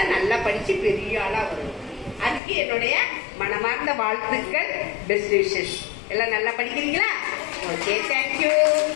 நல்லா படிச்சு பெரிய ஆளா வரும். அதுக்கு என்னுடைய மனமார்ந்த வாழ்த்துக்கள், பெஸ்ட் விஷஸ். எல்லாம் நல்லா படிக்கிறீங்களா? Okay, thank you.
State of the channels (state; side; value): drops out; right; at 2.4 s